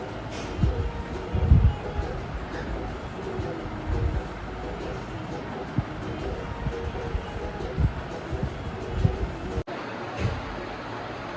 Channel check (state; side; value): identical; both; correlation 1.00